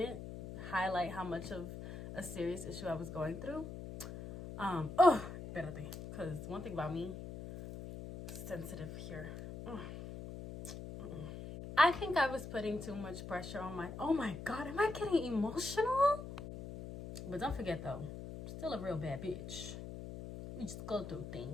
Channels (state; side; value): noise; left; hum, 9 dB below the sound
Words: highlight how much of a serious issue I was going through. Espérate, because one thing about me, sensitive here. I think I was putting too much pressure on my, oh my God, am I getting emotional? But don't forget though, still a real bad bitch. We just go through